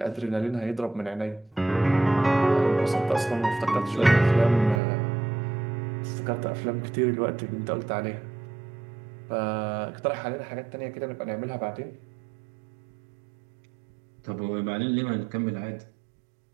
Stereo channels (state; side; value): drops out; left; at 4.8 s